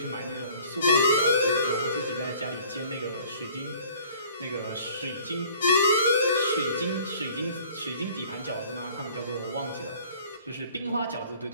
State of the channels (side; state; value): both; inverted; correlation -0.52